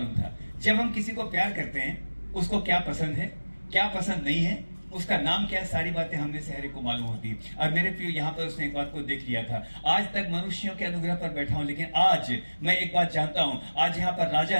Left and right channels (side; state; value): both; inverted; correlation -1.00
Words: था? जब हम किसी को प्यार करते हैं, उसको क्या पसंद है, क्या पसंद नहीं है, उसका नाम क्या है, सारी बातें हमने से हर एक को मालूम होती है। और मेरे प्रियो, यहाँ पर उसने एक बात को देख लिया था। आज तक मनुष्यों के अनुग्रह पर बैठा हूं, लेकिन आज मैं एक बात जानता हूं, आज यहाँ पर राजा